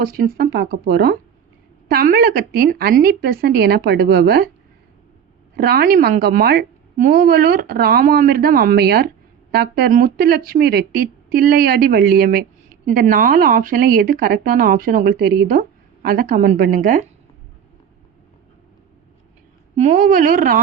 தான் பார்க்க போகிறோம். தமிழகத்தின் அன்னி பெசன்ட் எனப்படுபவர் ராணி மங்கம்மாள், மூவலூர் ராமாமிர்தம் அம்மையார், டாக்டர் முத்துலட்சுமி ரெட்டி, தில்லையாடி வள்ளியம்மை. இந்த 4 ஆப்ஷனில் எது கரெக்டான ஆப்ஷன் உங்களுக்கு தெரியுதோ அதை கமெண்ட் பண்ணுங்கள். மூவலூர்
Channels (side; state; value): left; quieter; 8.3 dB